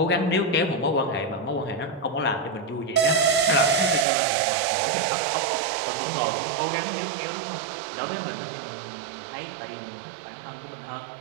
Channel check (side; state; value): left; drops out; at 4.0 s